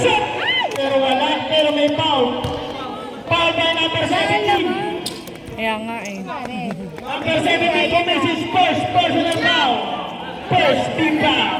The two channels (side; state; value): both; identical; correlation 1.00